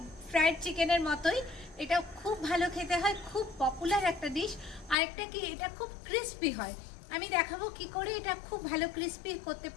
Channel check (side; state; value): right; drops out; at 5.0 s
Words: ফ্রায়েড চিকেনের মতোই, এটা খুব ভালো খেতে হয়, খুব পপুলার একটা ডিশ। আরেকটা কি, এটা খুব ক্রিস্পি হয়। আমি দেখাবো কি করে এটা খুব ভালো ক্রিস্পি করতে